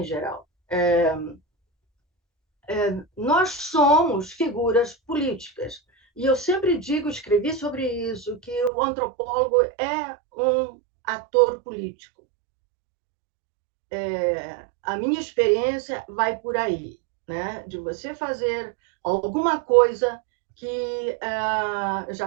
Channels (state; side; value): drops out; left; at 8.7 s